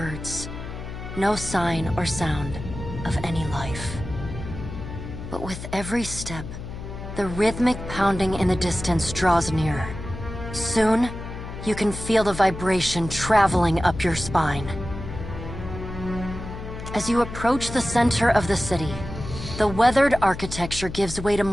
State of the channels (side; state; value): left; noise; hum, 9 dB below the sound